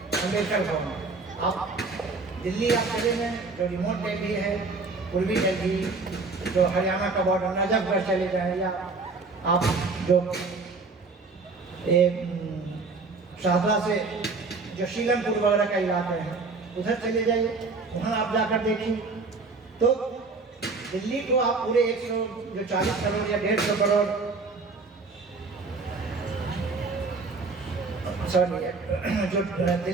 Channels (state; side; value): quieter; left; 4.0 dB